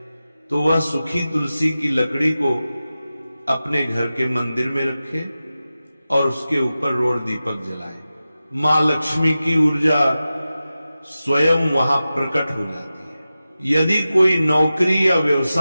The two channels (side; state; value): both; inverted; correlation -0.94